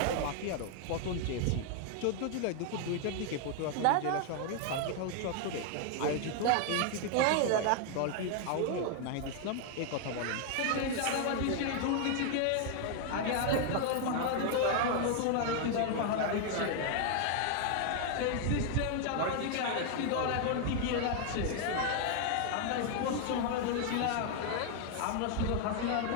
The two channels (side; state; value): both; different; correlation 0.00